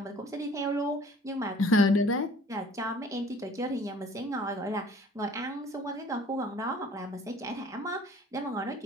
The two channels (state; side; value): normal; both; correlation 0.52